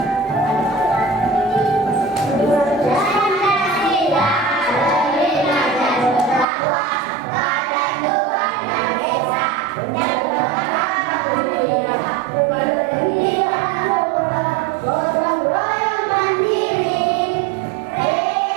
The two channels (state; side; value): drops out; left; at 6.5 s